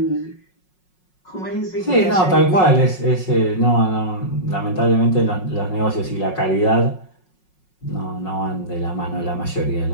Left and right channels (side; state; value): right; late; 5.5 ms